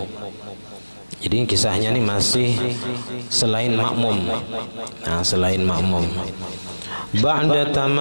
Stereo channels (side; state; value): both; inverted; correlation -1.00